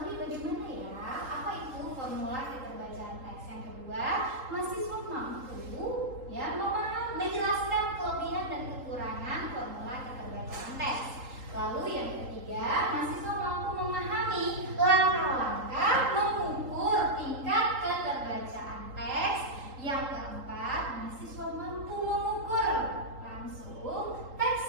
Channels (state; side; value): late; left; 3.8 ms